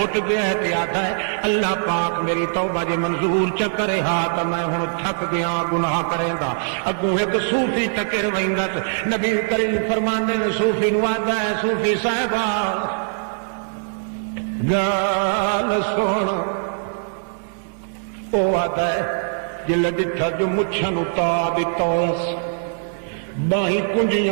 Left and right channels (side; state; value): left; silent; 57 dB below the other